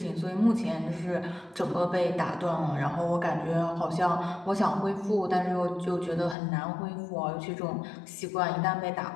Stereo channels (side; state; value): right; drops out; at 6.4 s